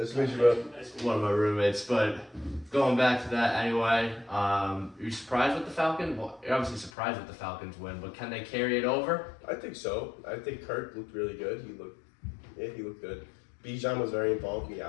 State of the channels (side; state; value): right; drops out; at 6.9 s